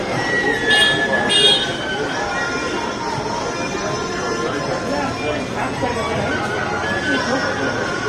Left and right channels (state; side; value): identical; both; correlation 1.00